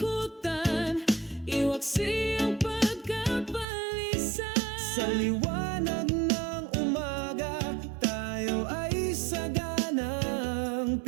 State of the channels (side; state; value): left; drops out; at 3.7 s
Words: iwaksi ang pagkapalisa. Sa liwanag ng umaga, tayo ay saganang